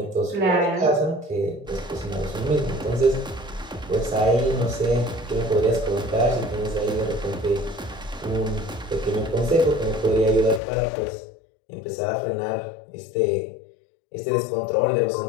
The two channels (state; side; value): drops out; right; at 10.6 s